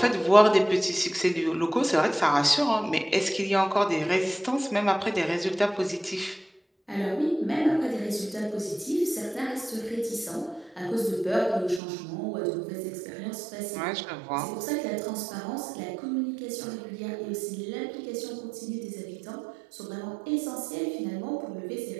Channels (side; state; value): left; drops out; at 11.8 s